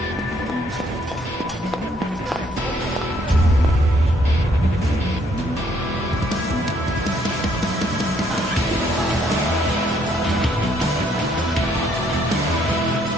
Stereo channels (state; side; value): normal; both; correlation 0.68